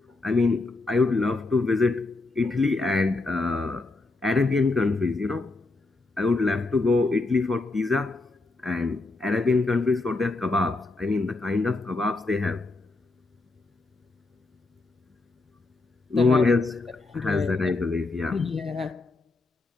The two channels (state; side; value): quieter; right; 3.4 dB